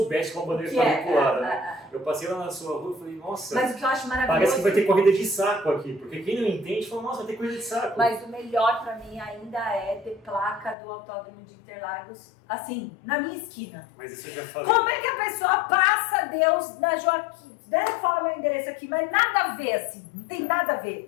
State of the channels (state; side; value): drops out; right; at 10.8 s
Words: como a bandeira que está é, vinculada, né? Eu passei lá na sua rua e falei, nossa, mas o que eu acho maravilhoso... parece que vai ter corrida de saco aqui. Porque quem não entende fala, nossa, vai ter corrida de saco. Mas o melhor pra mim ainda é ter placa do Autódromo de Interlagos, assim, na minha esquina. Mas isso eu já falei. Como é que a pessoa passa Deus na Joaquim? Deve falar meu endereço aqui, mas nada a ver, assim, não tem nada a